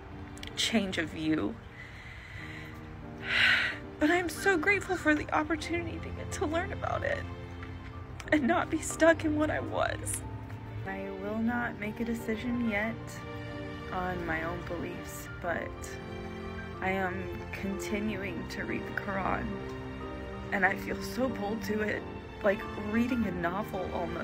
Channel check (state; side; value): identical; both; correlation 1.00